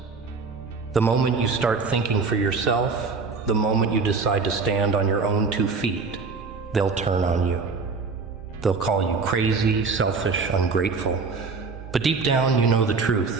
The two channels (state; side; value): quieter; left; 4.6 dB